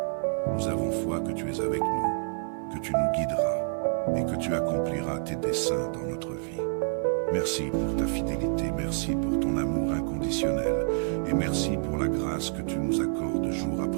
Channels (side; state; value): left; silent; 59 dB below the other